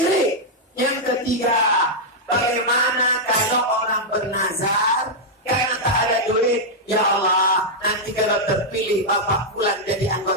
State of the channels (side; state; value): both; normal; correlation -0.04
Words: Yang ketiga, bagaimana kalau orang bernazar karena tak ada duit? Ya Allah, nanti kalau terpilih Bapak Fulan jadi